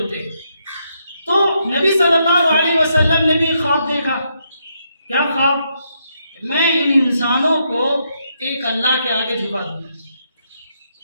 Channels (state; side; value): inverted; both; correlation -0.78